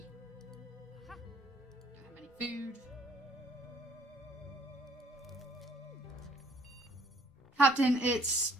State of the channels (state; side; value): normal; both; correlation 0.62